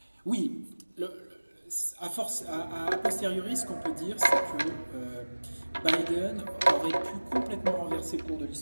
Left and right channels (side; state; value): both; inverted; correlation -1.00